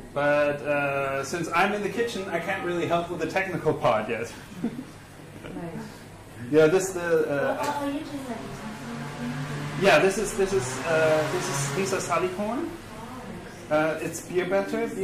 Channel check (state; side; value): identical; both; correlation 1.00